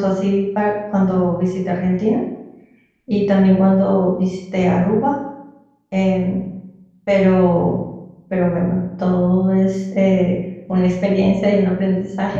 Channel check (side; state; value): both; identical; correlation 1.00